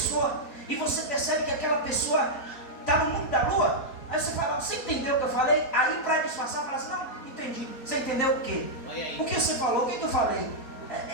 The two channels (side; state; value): right; late; 4.2 ms